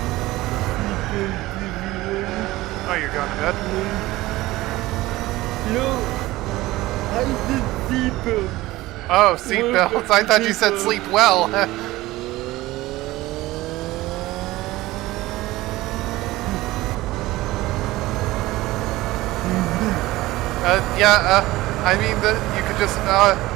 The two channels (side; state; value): left; quieter; 18.1 dB